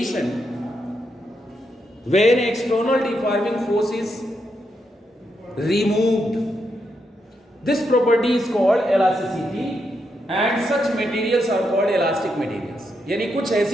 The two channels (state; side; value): normal; both; correlation 0.82